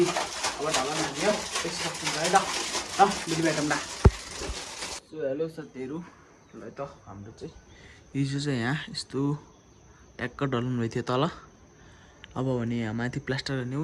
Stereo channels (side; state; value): both; identical; correlation 1.00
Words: अब ढलान हान्यो त्यसो है त। भोलि भेटौँ ल। सो हेलो साथीहरू, ल त हाम्रो चाहिँ हिजो चाहिँ यहाँ यस्तो ट्याक्क ढलान भएको थियो तल। अब भने यहाँ माथि प्लास्टर गर्ने